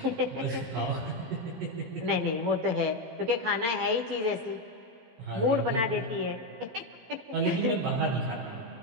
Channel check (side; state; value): left; late; 13 ms